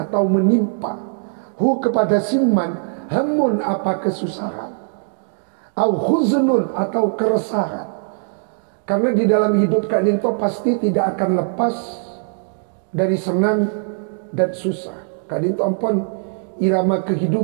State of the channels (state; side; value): silent; left; digital silence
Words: menimpa hu kepada siman hamun apa kesusahan, au huznun atau keresahan. Karena di dalam hidup Kak Dinto pasti tidak akan lepas dari senang dan susah. Kak Dinto ampun irama